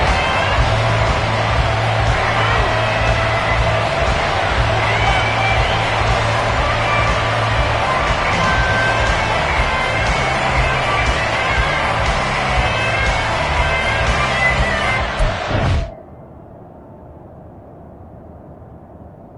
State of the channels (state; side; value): identical; both; correlation 1.00